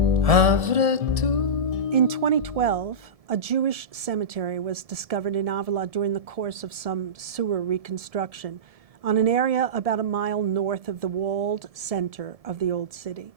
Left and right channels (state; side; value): late; left; 1.7 ms